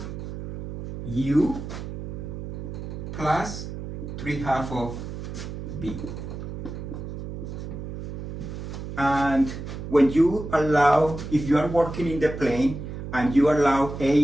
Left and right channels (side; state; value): right; noise; hum, 8 dB below the sound